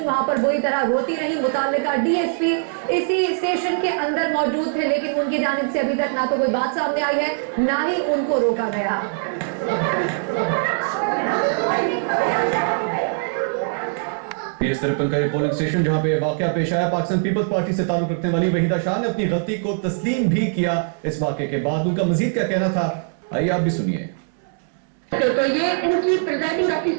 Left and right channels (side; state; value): left; silent; digital silence